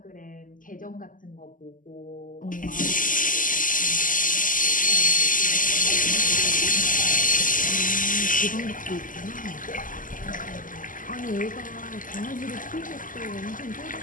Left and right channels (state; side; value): late; right; 0.38 ms